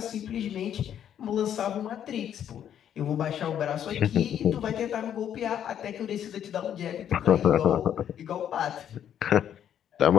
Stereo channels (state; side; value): quieter; right; 9.7 dB